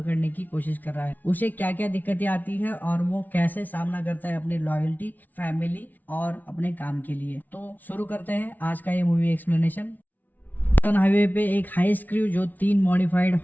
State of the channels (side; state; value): right; late; 0.081 ms